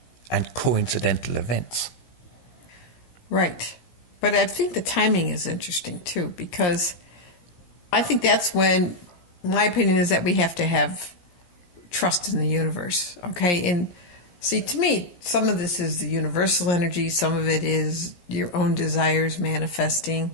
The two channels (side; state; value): right; late; 17 ms